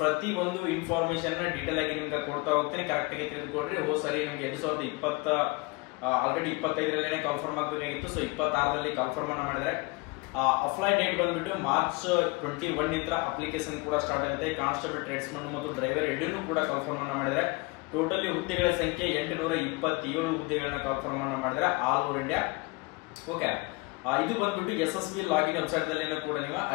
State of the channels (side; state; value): right; quieter; 26.5 dB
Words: ಪ್ರತಿ ಒಂದು ಇನ್ಫಾರ್ಮೇಶನ್ ಡೀಟೇಲ್ ಆಗಿ ನಿಮ್ಗೆ ಕೊಡ್ತಾ ಹೋಗ್ತೀನಿ. ಕರೆಕ್ಟ್ ಆಗಿ ತಿಳಿದುಕೊಡ್ರಿ. ಸರಿ ನಿಮ್ಗೆ 2020 ಆಲ್ರೆಡಿ 25ರಲ್ಲೇ ಕನ್ಫರ್ಮ್ ಆಗಬೇಕಾಗಿತ್ತು. ಸೊ 26ರಲ್ಲಿ ಕನ್ಫರ್ಮ್ ಅನ್ನ ಮಾಡಿದ್ರೆ ಅಪ್ಲೈ ಡೇಟ್ ಬಂದ್ಬಿಟ್ಟು ಮಾರ್ಚ್ 21 ನಿಂದ ಅಪ್ಲಿಕೇಶನ್ ಕೂಡ ಸ್ಟಾರ್ಟ್ ಆಗುತ್ತೆ. ಕಾನ್ಸ್ಟೇಬಲ್, ಟ್ರೇಡ್ಸ್ಮನ್ ಮತ್ತು ಡ್ರೈವರ್ ಎರಡನ್ನೂ ಕೂಡ ಕನ್ಫರ್ಮ್ ಅನ್ನ ಮಾಡಿದ್ರೆ ಟೋಟಲಿ ಹುದ್ದೆಗಳ ಸಂಖ್ಯೆ 827 ಹುದ್ದೆಗಳನ್ನ ಕನ್ಫರ್ಮ್ ಅನ್ನ ಮಾಡಿದ್ರೆ ಆಲ್ ಓವರ್ ಇಂಡಿಯಾ. ಓಕೆ, ಇದು ಬಂದ್ಬಿಟ್ಟು ಯಶಸ್ವಿ ಲಾಗಿನ್ ವೆಬ್ಸೈಟ್ ದಲ್ಲಿ ಕೂಡ ನೀವು